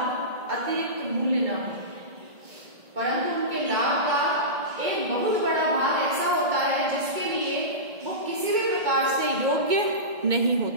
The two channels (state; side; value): late; left; 2.2 ms